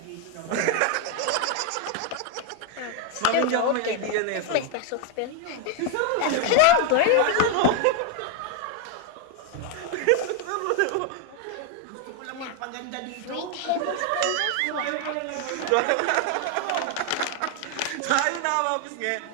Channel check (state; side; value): different; both; correlation 0.01